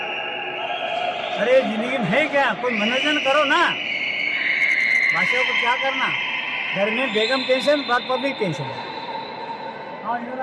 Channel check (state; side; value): identical; both; correlation 1.00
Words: अरे जिंदगी में है क्या, कोई मनोरंजन करो ना, बादशाह को क्या करना, घर में बेगम टेंशन, बात पब्लिक टेंशन। हाँ इधर